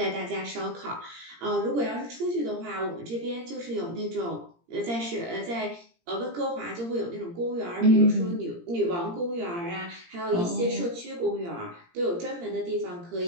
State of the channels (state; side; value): late; left; 17 ms